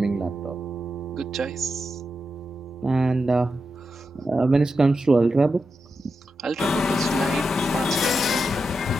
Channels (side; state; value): both; normal; correlation 0.88